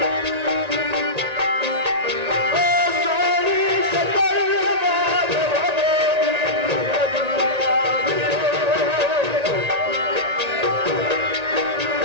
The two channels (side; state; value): left; late; 1.9 ms